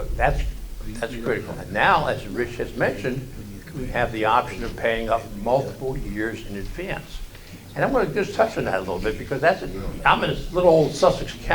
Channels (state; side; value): identical; both; correlation 1.00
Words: that's critical. And now, as Rich has mentioned, we have the option of paying up multiple years in advance. And I'm gonna just touch on that a little bit because I'm in this little old Sussex